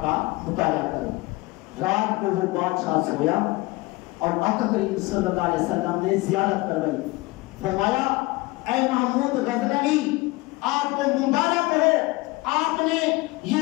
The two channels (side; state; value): right; quieter; 22.5 dB